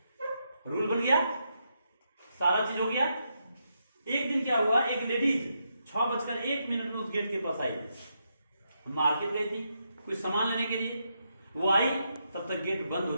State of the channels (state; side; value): inverted; both; correlation -0.82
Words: रूल बन गया। सारा चीज हो गया। एक दिन क्या हुआ, एक लेडीज 6:01 में उस गेट के पास आई, मार्केट गई थी कुछ सामान लेने के लिए। वो आई तब तक गेट बंद हो